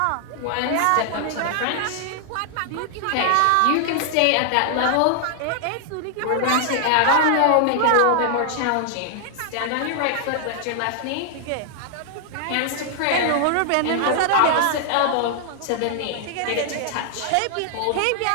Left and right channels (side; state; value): both; different; correlation 0.00